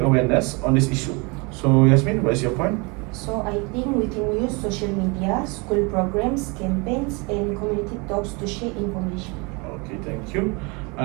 on this issue. So, Yasmin, what is your point? So I think we can use social media, school programs, campaigns, and community talks to share information. Okay, thank you.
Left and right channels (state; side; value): quieter; left; 29.4 dB